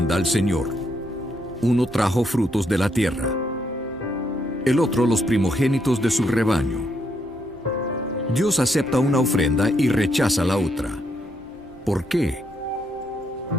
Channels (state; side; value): normal; both; correlation 0.76